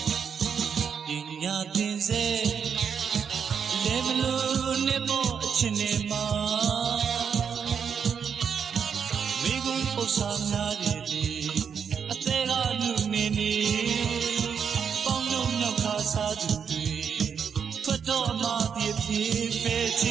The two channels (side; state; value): left; quieter; 7.0 dB